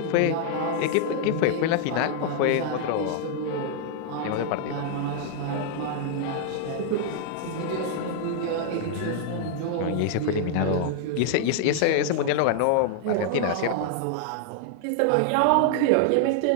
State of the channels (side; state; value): both; different; correlation 0.00